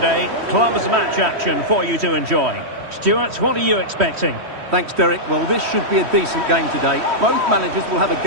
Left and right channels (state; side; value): late; left; 3.1 ms